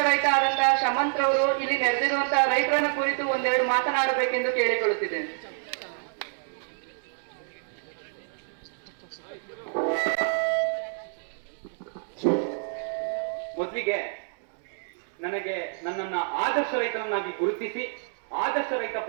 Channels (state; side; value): silent; left; digital silence